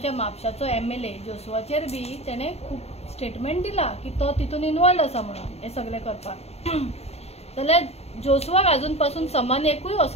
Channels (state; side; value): late; right; 0.30 ms